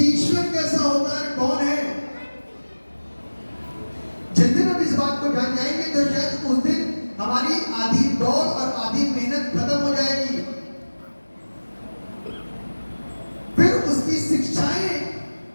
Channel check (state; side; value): inverted; both; correlation -1.00